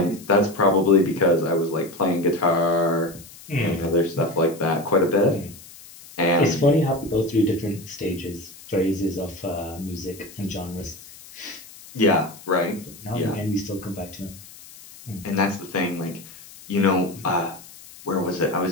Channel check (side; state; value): left; noise; hiss, 19 dB below the sound